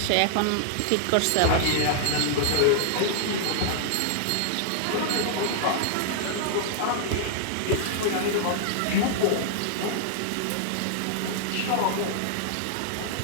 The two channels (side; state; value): both; different; correlation -0.01